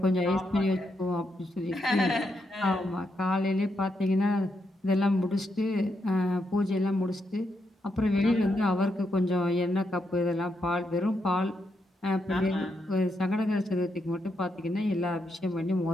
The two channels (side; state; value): both; normal; correlation 0.81